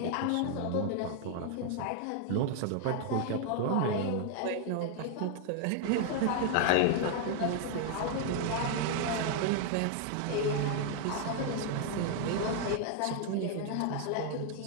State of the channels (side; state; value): both; different; correlation 0.00